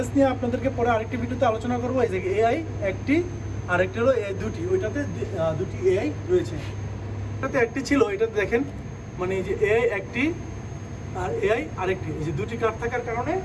নিয়ে আপনাদেরকে পরে আরেকটি ভিডিওতে আলোচনা করবো। এই যে এআই একটি, আরেকটি হলো এআই দুটি, ওইটাতে দুটি এআই রয়েছে। এটাতে একটি ছিল, এটাতে দেখেন মানে এই যে এআই একটি আর এআই আরেকটি, এই যে দুটি কার্ড থাকার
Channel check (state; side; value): identical; both; correlation 1.00